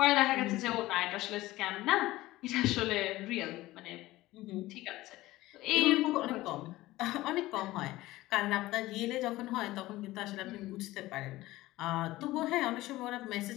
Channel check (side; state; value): right; quieter; 17.6 dB